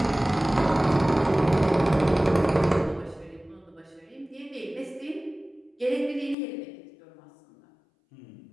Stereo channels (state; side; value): drops out; right; at 6.4 s